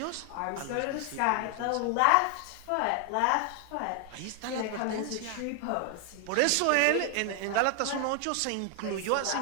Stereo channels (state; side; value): different; both; correlation 0.00